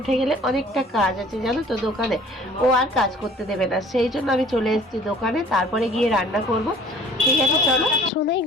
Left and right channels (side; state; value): both; normal; correlation 0.51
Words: গেলে অনেকটা কাজ আছে জানো তো দোকানে, ও আর কাজ করতে দেবে না, সেই জন্য আমি চলে এসেছি দোকানে। তারপরে গিয়ে রান্না করব। ঠিক আছে চলো। সোনাই